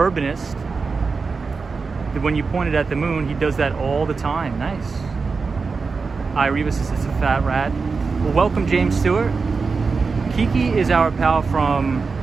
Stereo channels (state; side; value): quieter; left; 4.6 dB